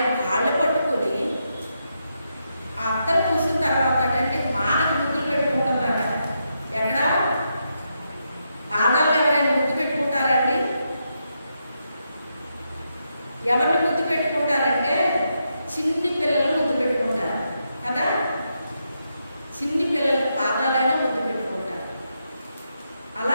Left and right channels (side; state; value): both; inverted; correlation -0.83